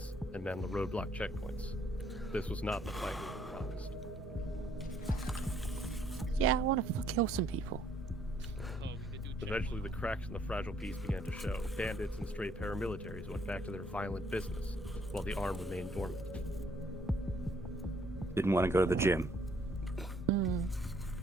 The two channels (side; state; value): both; normal; correlation 0.66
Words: and man the roadblock checkpoints. This was not the fight we promised. Yeah, I want to kill some people. Eventually, the cracks in the fragile peace began to show. Bandits and stray paramilitaries went back to their violent business, while the arm remained dormant. Didn't want to go to the gym.